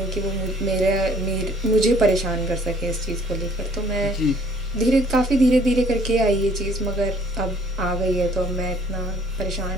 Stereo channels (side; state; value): both; normal; correlation 0.59